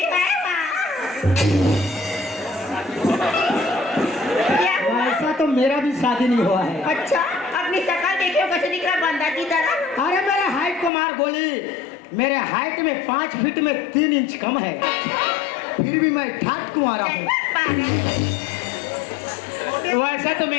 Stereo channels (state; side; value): drops out; right; at 10.9 s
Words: है माँ। क्या हुआ? ऐसा तो मेरा भी शादी नहीं हुआ है। अच्छा, अपनी शक्ल देखियो कैसे दिख रहा बंदा की तरह। अरे मेरे हाइट को मार गोली। मेरे हाइट में 5 फीट में 3 इंच कम है, फिर भी मैं ठाक तुम्हारा हूँ। वैसा तो